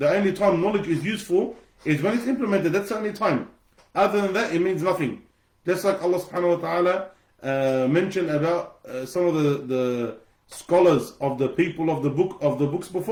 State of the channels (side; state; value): both; identical; correlation 1.00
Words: only time knowledge is useful is when it's implemented. That's the only time. Other than that, it means nothing. Just like Allah subhanahu wa ta'ala mentioned about some of the scholars of the people of the books